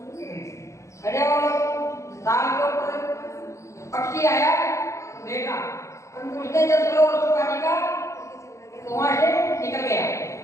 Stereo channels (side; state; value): right; late; 0.15 ms